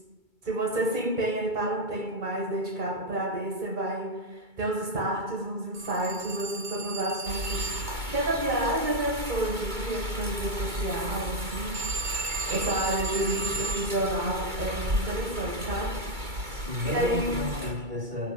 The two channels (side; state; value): left; late; 2.3 ms